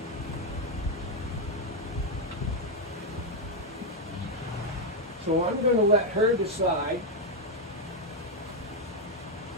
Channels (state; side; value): normal; both; correlation 0.02